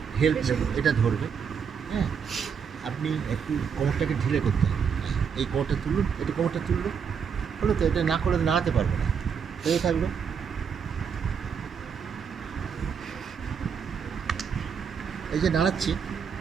হেল্প নেব, এটা ধরবে। হ্যাঁ, আপনি একটু কোমরটাকে ঢিলে করতে হবে, এই কোমরটা তুলুন, এটা কোমরটা তুললো, হলো তো, এটা না করে নাড়াতে পারবে না, এই থাকলো। এই যে নাড়াচ্ছি,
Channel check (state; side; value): quieter; left; 6.8 dB